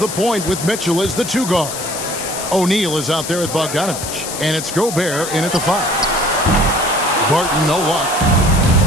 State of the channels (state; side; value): noise; left; hiss, 7 dB below the sound